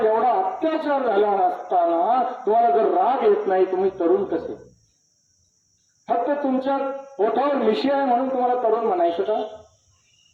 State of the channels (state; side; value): identical; both; correlation 1.00